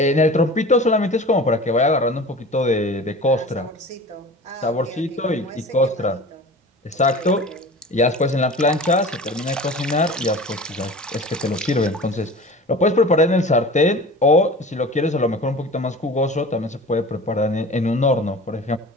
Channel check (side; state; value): both; normal; correlation 0.38